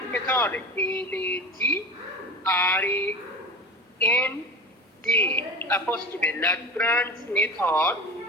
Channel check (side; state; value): both; normal; correlation 0.31